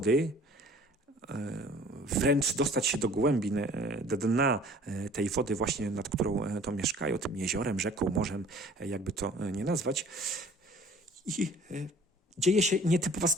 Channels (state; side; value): normal; both; correlation 0.51